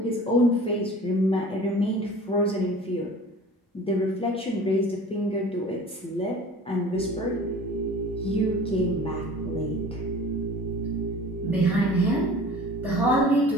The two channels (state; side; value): normal; both; correlation 0.43